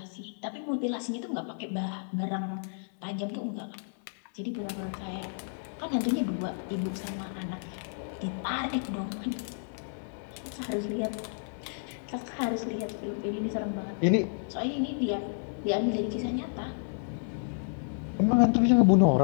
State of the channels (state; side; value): silent; right; digital silence